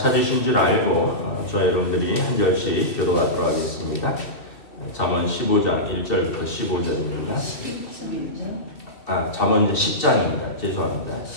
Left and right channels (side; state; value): right; late; 2.7 ms